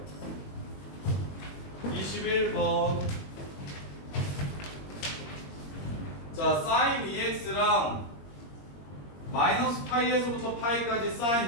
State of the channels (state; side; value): late; right; 21 ms